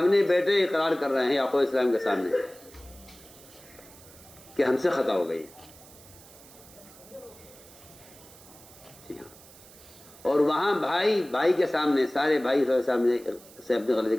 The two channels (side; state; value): right; noise; hiss, 22 dB below the sound